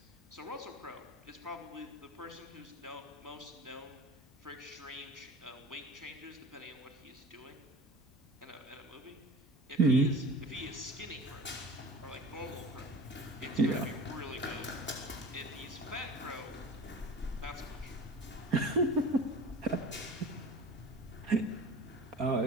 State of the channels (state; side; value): normal; both; correlation 0.39